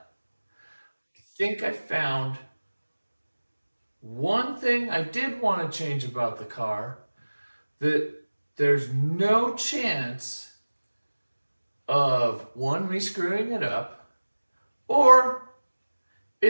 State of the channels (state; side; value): inverted; both; correlation -1.00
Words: I think I found one thing I did want to change about the car that there's no chance of one, me screwing it up, or